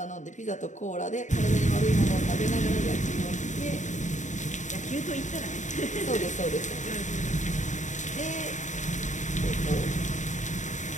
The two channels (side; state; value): right; late; 0.35 ms